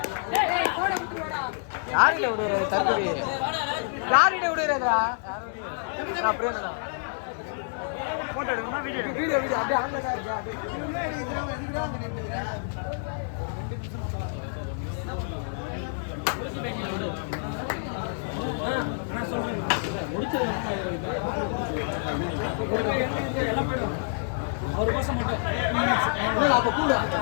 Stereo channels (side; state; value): right; silent; digital silence